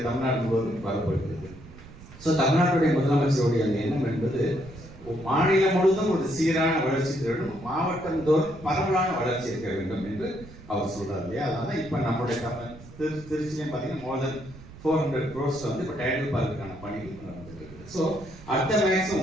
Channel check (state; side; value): noise; right; rumble, 18 dB below the sound